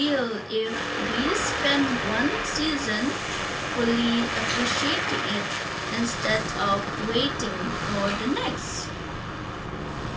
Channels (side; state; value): both; identical; correlation 1.00